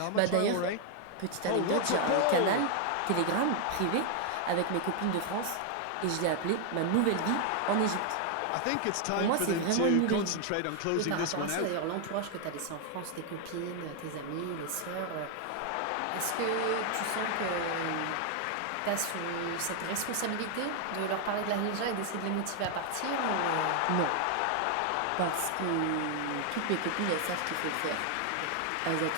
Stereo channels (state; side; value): different; both; correlation 0.00